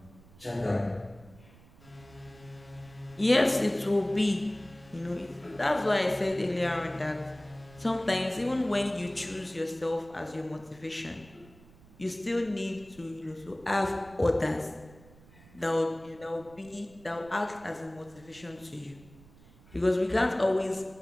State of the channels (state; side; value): noise; right; rumble, 24 dB below the sound